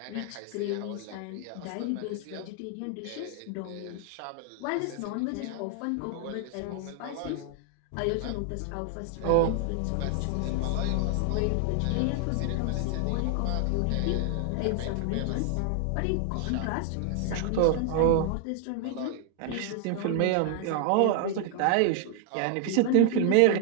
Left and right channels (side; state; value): both; different; correlation 0.00